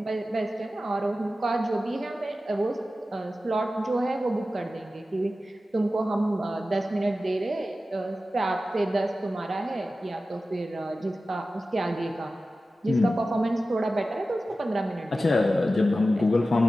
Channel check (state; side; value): normal; both; correlation 0.94